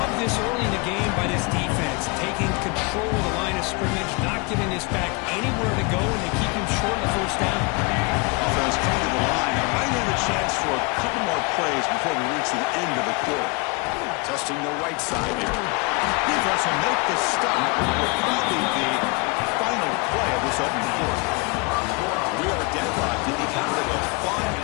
this early in the game by this defense, taking control of the line of scrimmage, not giving this back anywhere to go, and they keep him short of the first down. Offense coming to the line. Now might have a chance for a couple more plays before we reach the end of the quarter. Testing the right side here. Defense will make the stop. It will probably be the final play of this opening quarter. We are deadlocked at the end of a fun,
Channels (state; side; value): quieter; right; 28.7 dB